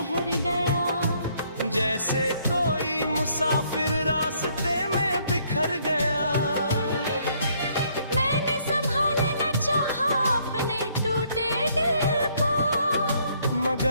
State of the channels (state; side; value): inverted; both; correlation -0.67